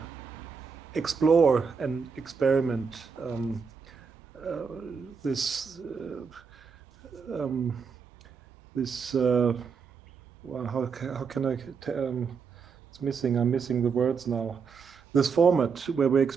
explore and experiment this well, how can I it's missing, I'm missing the words now, this format where we're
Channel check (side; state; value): left; quieter; 5.8 dB